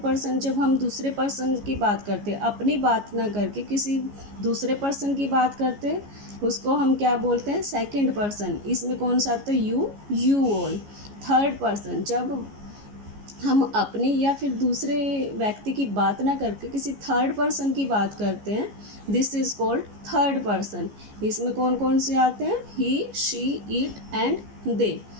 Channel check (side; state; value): left; late; 14 ms